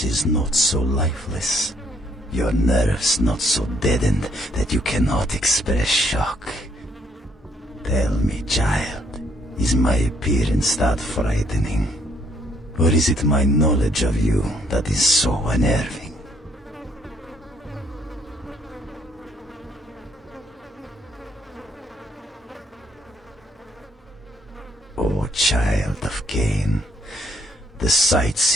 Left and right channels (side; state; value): both; normal; correlation 0.68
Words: is not so lifeless. Your nerves not so deadened that you cannot express shock. Tell me, child, is my appearance that frightening? Or is it my knowledge of you that is so unnerving? O child of Cain, the